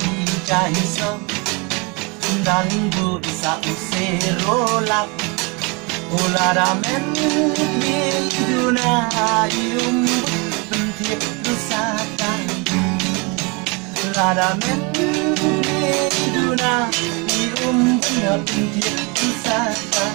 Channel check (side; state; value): left; quieter; 29.7 dB